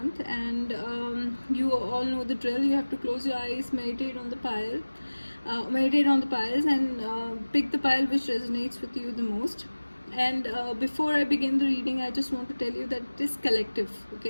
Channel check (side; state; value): both; inverted; correlation -1.00